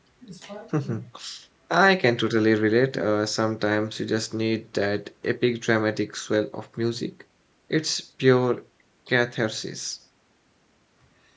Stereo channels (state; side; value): identical; both; correlation 1.00